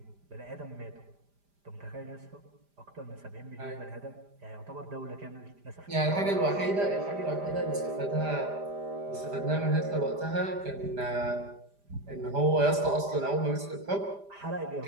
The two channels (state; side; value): late; left; 5.0 ms